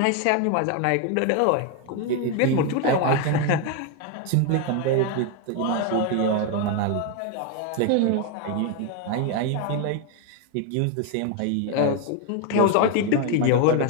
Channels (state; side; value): different; both; correlation 0.01